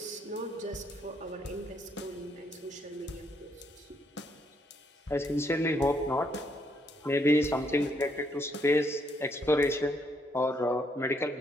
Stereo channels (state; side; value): normal; both; correlation 0.72